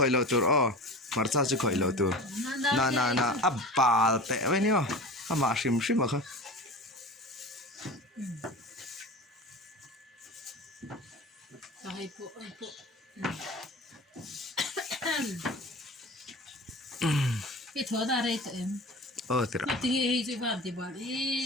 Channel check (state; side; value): normal; both; correlation 0.34